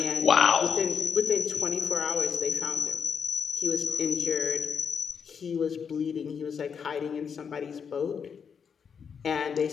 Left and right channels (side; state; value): right; quieter; 6.7 dB